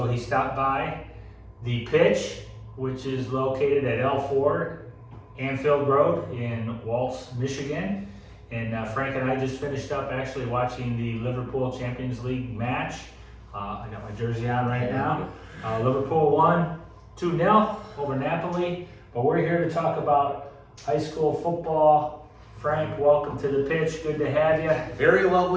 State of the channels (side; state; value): both; identical; correlation 1.00